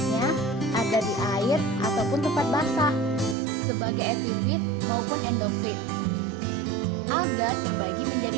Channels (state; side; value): drops out; left; at 3.4 s